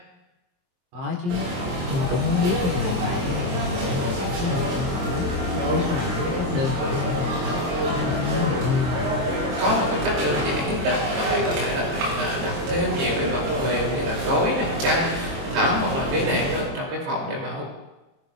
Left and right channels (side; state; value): left; late; 23 ms